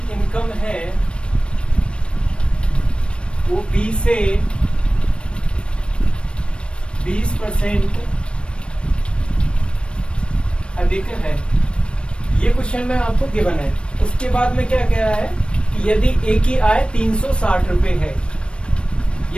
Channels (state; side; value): late; right; 0.058 ms